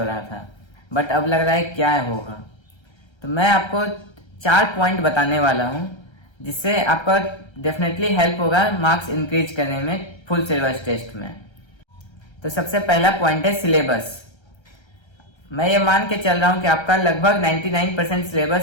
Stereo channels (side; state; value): right; late; 1.3 ms